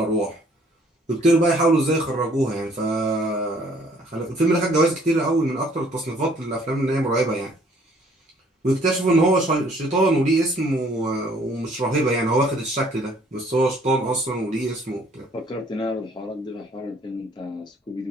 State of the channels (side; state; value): both; normal; correlation 0.60